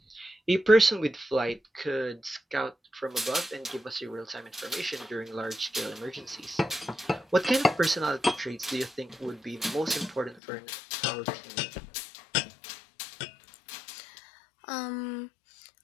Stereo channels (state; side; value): drops out; right; at 10.4 s